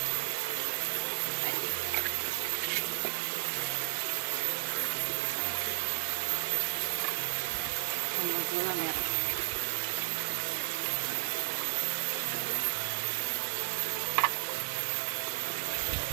Ini gula merah.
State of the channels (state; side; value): silent; left; 55 dB below the other